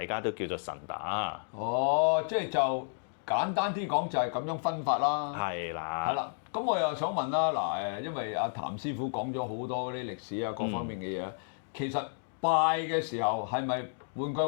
家都叫做神打。即係就簡單啲講就係咁樣分法啦。係啦。係啦，咁我又想問啦，嗱因為阿譚師傅講咗好多嗰啲歷史啊各方面嘅嘢，其實拜嘅時候係咪？換句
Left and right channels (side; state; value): right; silent; digital silence